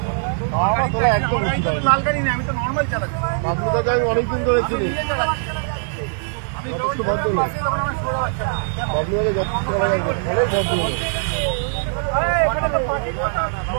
বলো। আমার তোলা একদম লাল গাড়ি নেই, আমি তো নর্মাল চালাচ্ছি। আপনি তো আমি অনেকদিন ধরে চিনি। আমি যখন বাসে যখন আমার শুয়ে বাচ্চা আপনি অনেক ভদ্র।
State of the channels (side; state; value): left; silent; 65 dB below the other